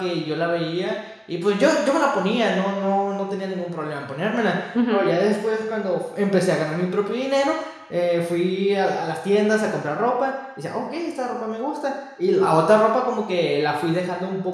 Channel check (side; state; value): both; identical; correlation 1.00